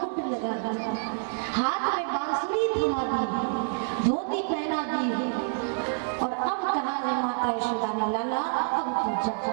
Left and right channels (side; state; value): left; silent; digital silence